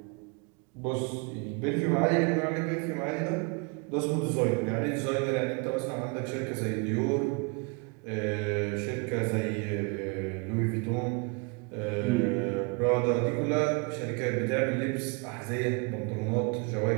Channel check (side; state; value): left; quieter; 31.5 dB